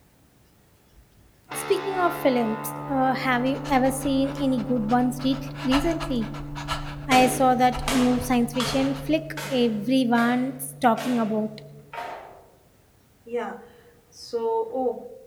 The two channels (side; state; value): both; identical; correlation 1.00